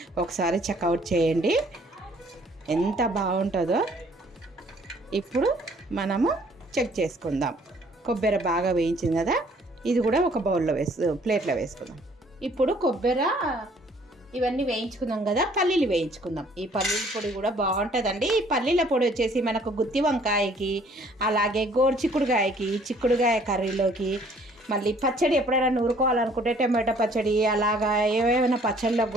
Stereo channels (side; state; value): both; normal; correlation 0.59